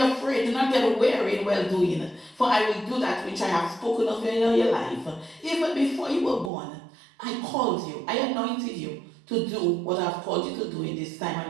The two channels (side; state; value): left; drops out; at 6.5 s